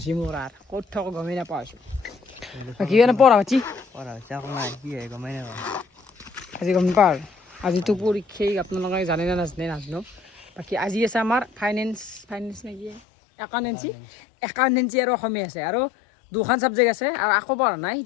মোৰ আৰু ক'ত থাকো গমেই নাপাওঁ আছো কি মানে পঢ়া পাতি গমেই নাপাওঁ আজি গম নাপাওঁ আৰু আজিতো পৰীক্ষাই আপোনালোকে জানে নে নাজানে নাজানো বাকী আজি আছে আমাৰ ফাইনেন্স নেকি একাউণ্টেঞ্চি আৰু অসমীয়া আছে আৰু দুখন ছাবজেক্ট আছে আৰু আকৌ পঢ়া নাই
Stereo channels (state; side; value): drops out; right; at 13.0 s